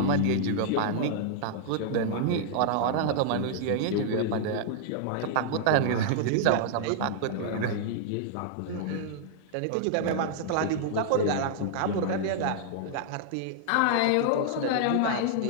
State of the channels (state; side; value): different; both; correlation -0.01